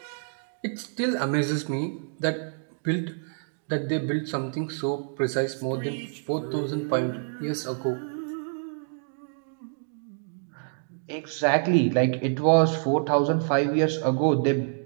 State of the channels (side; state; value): left; silent; digital silence